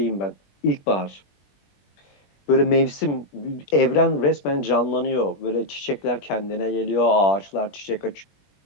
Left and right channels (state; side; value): late; right; 21 ms